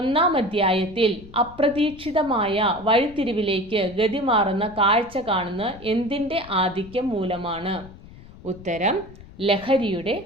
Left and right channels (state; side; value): noise; left; rumble, 19 dB below the sound